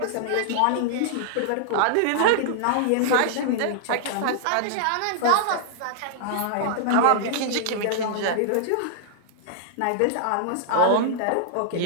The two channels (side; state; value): both; different; correlation -0.01